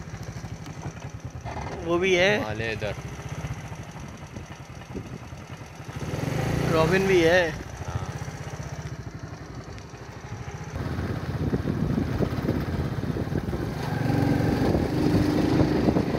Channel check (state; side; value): identical; both; correlation 1.00